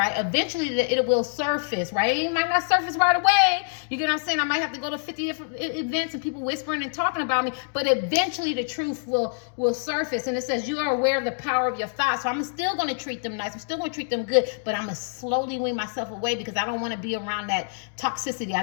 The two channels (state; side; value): silent; right; digital silence